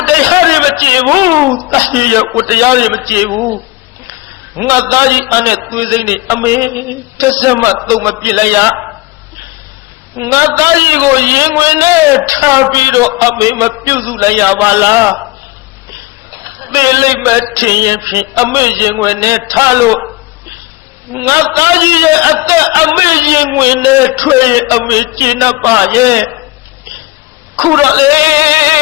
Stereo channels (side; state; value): right; quieter; 22.0 dB